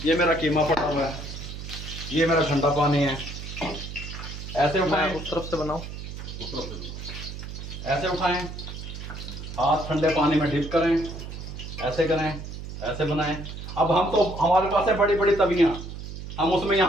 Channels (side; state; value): right; noise; hum, 9 dB below the sound